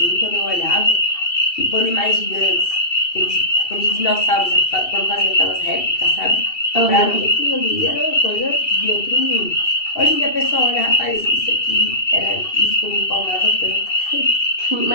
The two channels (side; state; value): right; late; 2.7 ms